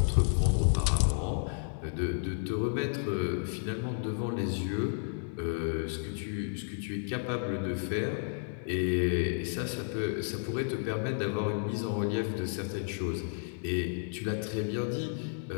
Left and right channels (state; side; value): silent; right; digital silence